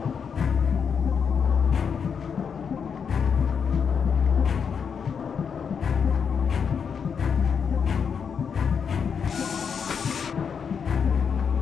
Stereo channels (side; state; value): right; quieter; 6.7 dB